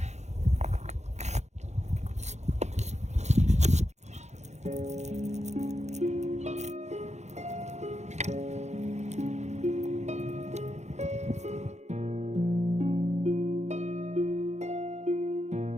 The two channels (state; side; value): late; left; 0.33 ms